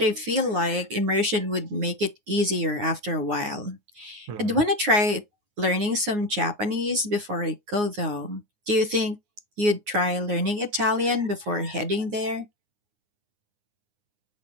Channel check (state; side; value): late; left; 9.7 ms